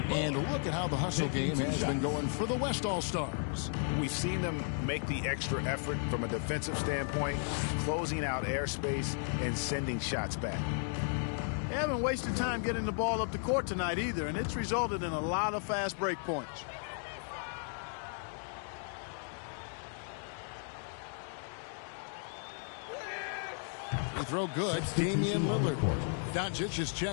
look at how the hustle game has been going for the West All-Stars. We've seen them make the extra effort from a defensive standpoint, closing out airspace and sending shots back. They haven't wasted time getting the ball up the court tonight either, and it's resulted in a lot of fast break points. Free throw good. Damian Lillard. Doncic is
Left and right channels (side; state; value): right; silent; 55 dB below the other